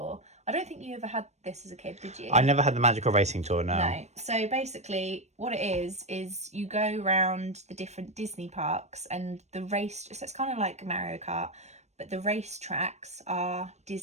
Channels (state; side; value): late; left; 0.32 ms